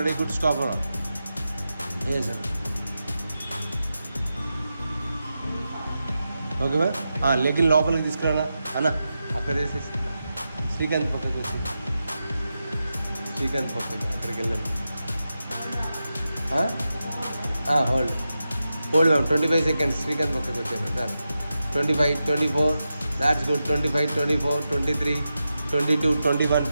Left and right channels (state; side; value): inverted; both; correlation -0.90